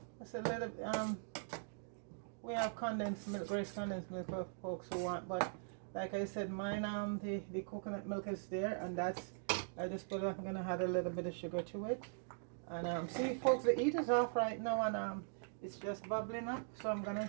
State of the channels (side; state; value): left; silent; digital silence